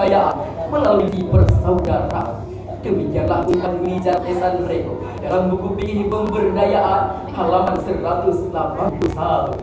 melalui persaudaraan. Demikianlah ungkapan Mijat Esan Rego dalam buku Fikih Pemberdayaan halaman 181.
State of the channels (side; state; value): both; identical; correlation 1.00